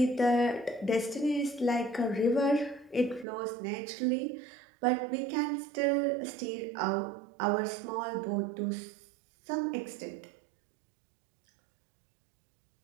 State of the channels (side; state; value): left; drops out; at 3.2 s